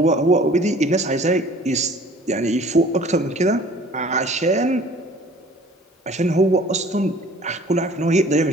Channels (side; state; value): both; normal; correlation 0.50